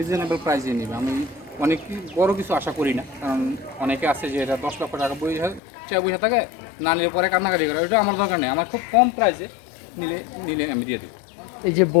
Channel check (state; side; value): drops out; right; at 5.6 s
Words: প্রাইসে নেবে। আমি অনেক বড় কিছু আশা করি না, কারণ অনেকে আছে যে এটা 10 লক্ষ টাকা বসে থাকে, না নিলে পরে কান্নাকাটি করে। ওটা আমার দরকার নেই, আমার খুব কম প্রাইসে নিলে আমি দিয়ে দেবো। এই যে